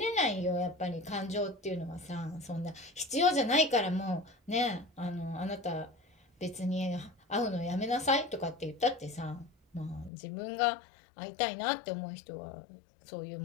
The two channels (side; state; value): right; drops out; at 10.1 s